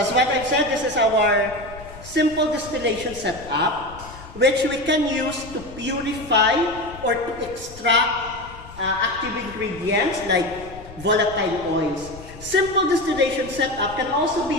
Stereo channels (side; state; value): left; noise; rumble, 17 dB below the sound